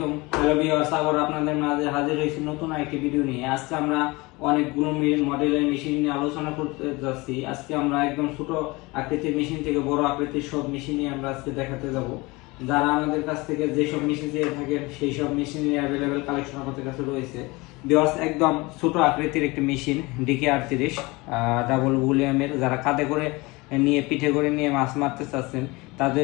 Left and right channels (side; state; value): right; quieter; 23.7 dB